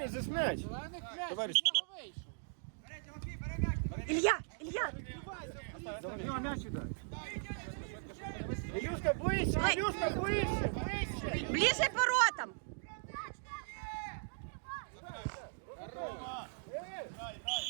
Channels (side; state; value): left; silent; digital silence